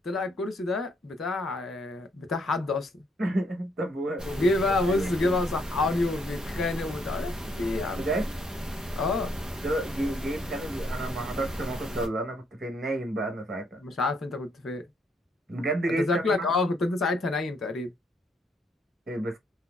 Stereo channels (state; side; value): normal; both; correlation 0.72